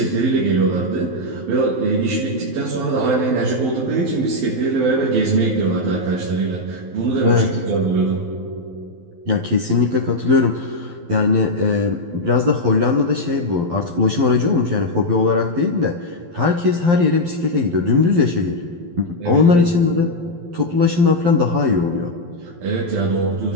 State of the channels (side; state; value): left; late; 12 ms